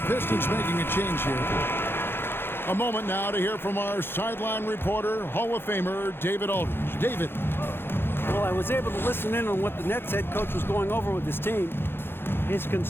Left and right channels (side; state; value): right; late; 0.11 ms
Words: Pistons making a change here. A moment now to hear from our sideline reporter, Hall of Famer David Aldridge. David. Well, I was able to listen in on what the Nets head coach was going over with his team. His